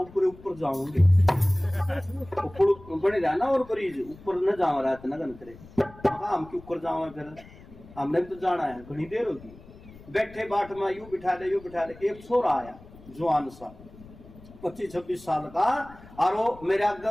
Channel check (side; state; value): left; noise; rumble, 20 dB below the sound